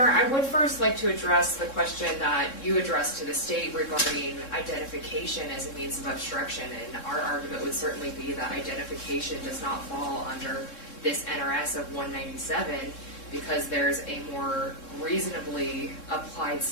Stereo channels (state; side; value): late; right; 3.7 ms